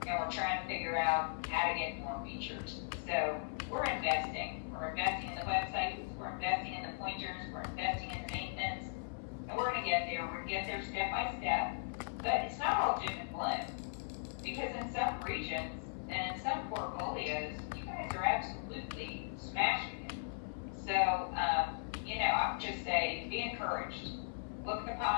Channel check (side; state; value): right; silent; 52 dB below the other